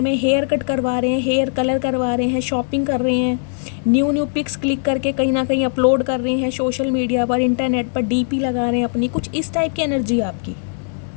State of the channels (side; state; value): right; silent; 66 dB below the other